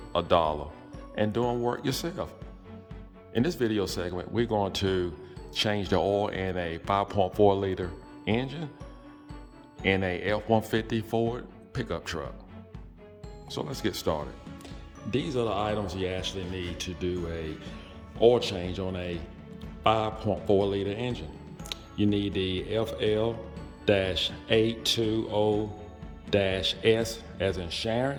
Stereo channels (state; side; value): identical; both; correlation 1.00